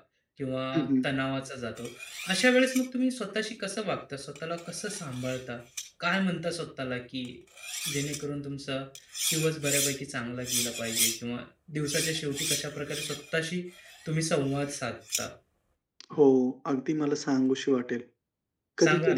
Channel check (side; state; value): both; identical; correlation 1.00